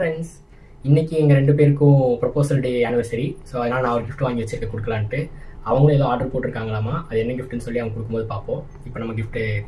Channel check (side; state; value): both; identical; correlation 1.00